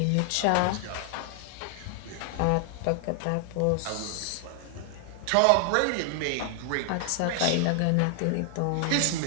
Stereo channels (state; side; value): different; both; correlation 0.00